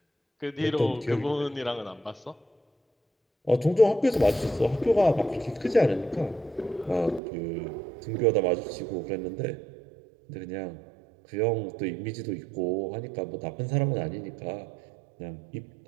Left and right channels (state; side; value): drops out; left; at 7.2 s